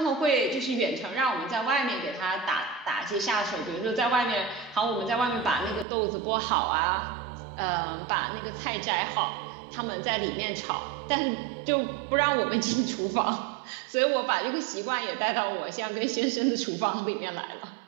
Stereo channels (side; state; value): left; drops out; at 5.9 s